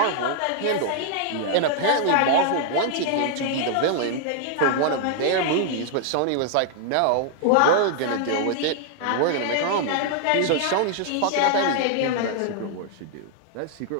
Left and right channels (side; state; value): both; different; correlation 0.00